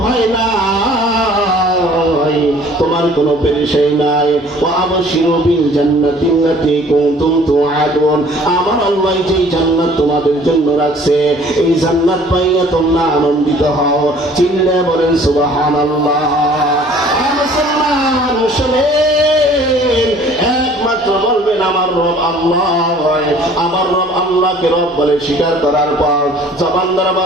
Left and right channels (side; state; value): both; normal; correlation 0.53